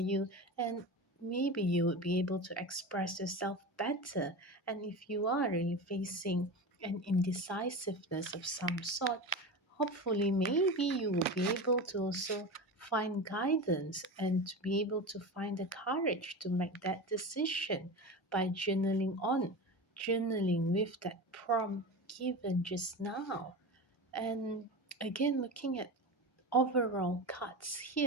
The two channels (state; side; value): normal; both; correlation 0.26